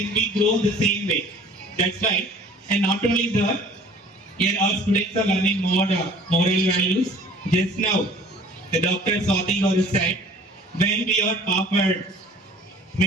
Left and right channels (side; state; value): both; normal; correlation 0.49